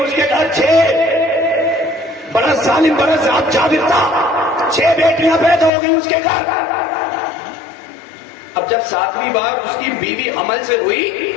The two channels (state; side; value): drops out; right; at 5.7 s